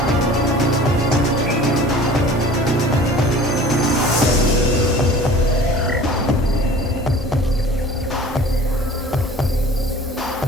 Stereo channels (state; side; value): normal; both; correlation 0.44